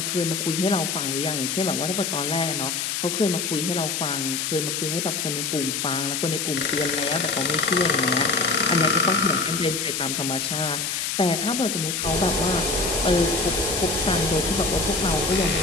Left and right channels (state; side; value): noise; left; hiss, 1 dB below the sound